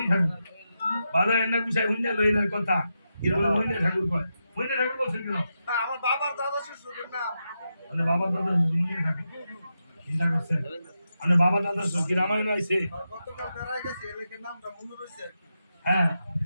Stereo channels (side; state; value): both; inverted; correlation -0.87